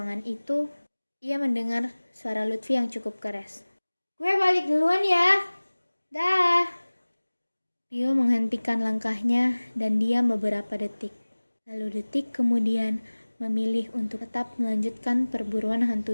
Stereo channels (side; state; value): both; inverted; correlation -1.00